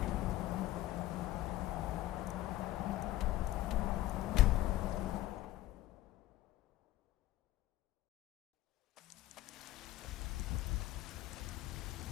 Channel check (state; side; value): quieter; right; 15.4 dB